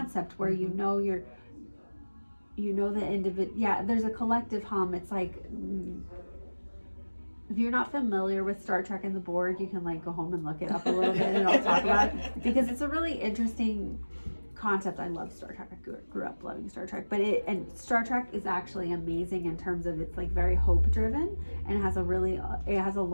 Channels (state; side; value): inverted; both; correlation -1.00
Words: where you know the individual. Yeah, there's a collective hum. It's like, if you're not familiar with Star Trek and the Borg, you can like go home and look it up a little bit, and I'll talk about it, because it's a really interesting concept. I love Star Trek. I grew up loving Star Trek, and Star Trek is actually amazing in terms of it's like very hope driven, and it has a